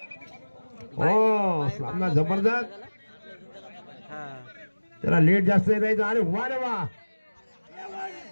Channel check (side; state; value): both; inverted; correlation -1.00